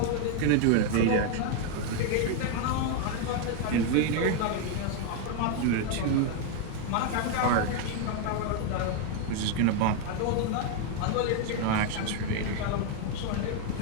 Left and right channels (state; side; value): different; both; correlation 0.01